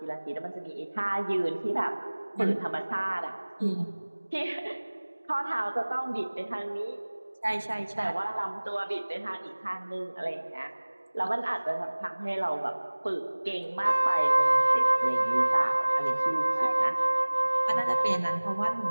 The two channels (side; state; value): both; inverted; correlation -1.00